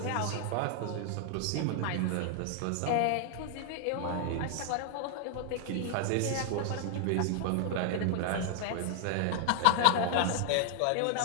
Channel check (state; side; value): different; both; correlation 0.00